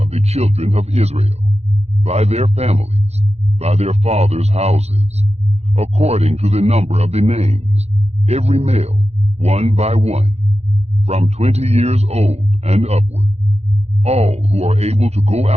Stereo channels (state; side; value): late; left; 0.31 ms